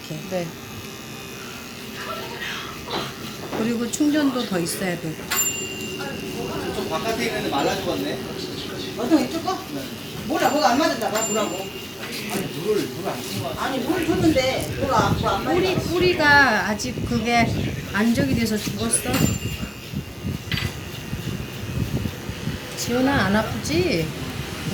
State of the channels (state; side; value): identical; both; correlation 1.00